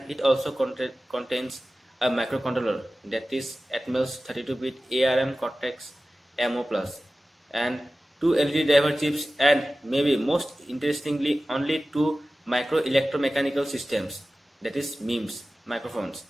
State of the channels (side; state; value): both; normal; correlation 0.96